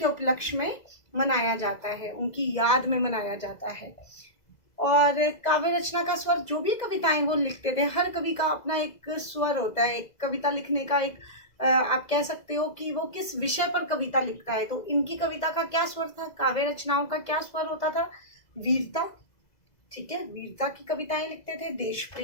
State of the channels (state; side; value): late; right; 2.0 ms